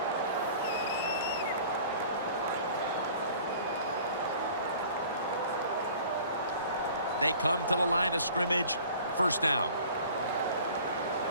They come to the line of scrimmage. First down.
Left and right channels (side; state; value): both; inverted; correlation -0.47